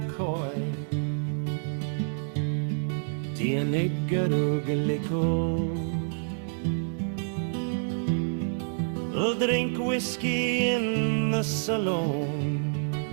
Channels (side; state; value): left; silent; digital silence